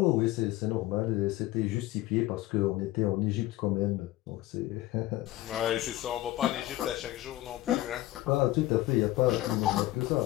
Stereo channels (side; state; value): right; quieter; 16.6 dB